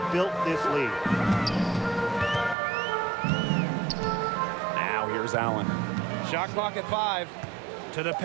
built this lead. Now here's Allen. Shot clock at 5. To the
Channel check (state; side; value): drops out; left; at 2.6 s